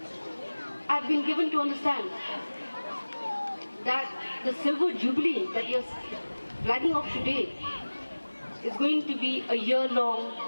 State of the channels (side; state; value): both; inverted; correlation -1.00